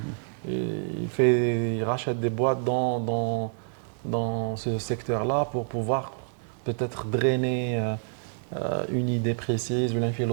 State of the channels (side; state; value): left; silent; digital silence